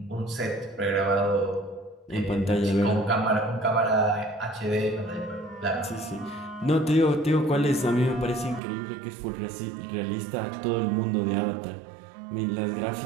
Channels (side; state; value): left; drops out; at 8.6 s